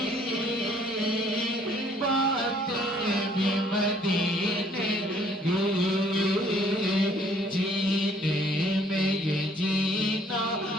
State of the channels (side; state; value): both; normal; correlation 0.61